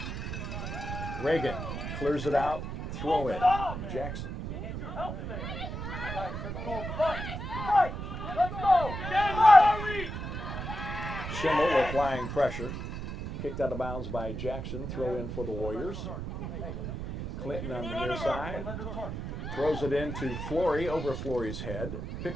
Reagan clears it out. Throw in. Jackson. Schimmel applying pressure. Kicked out of bounds by Jackson. Throw in for the Warriors. Clinton on the near side. Throws it into Flory, over Flory's head.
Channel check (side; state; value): right; noise; rumble, 6 dB below the sound